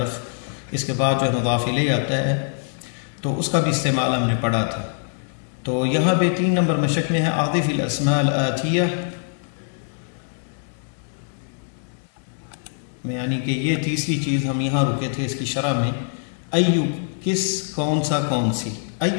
اس کے بعد جو ہے مضاف الیہ آتا ہے، تو اس کا بھی استعمال ہم نے پڑھا تھا۔ تو یہاں پہ 3 نمبر مشق میں ہے اعطف الاسماء الآتیہ، یعنی کہ یہ تیسری چیز ہم یہاں رکے تھے اس کی شرح میں۔ ایو کس، کون سا، کون سی۔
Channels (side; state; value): right; silent; digital silence